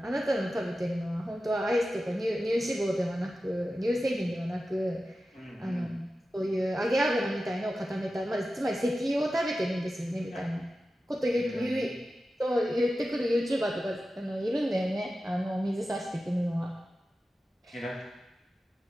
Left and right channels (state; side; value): normal; both; correlation 0.93